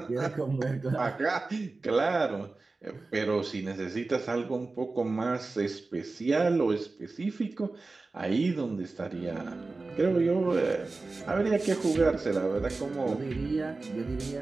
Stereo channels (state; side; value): quieter; left; 3.6 dB